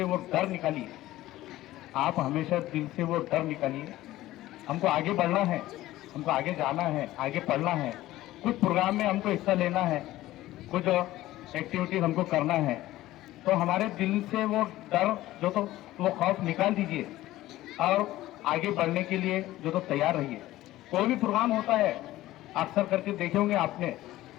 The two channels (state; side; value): quieter; right; 15.9 dB